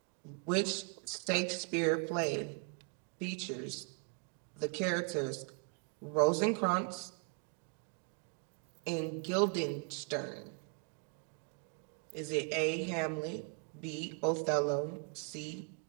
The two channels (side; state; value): left; quieter; 38.2 dB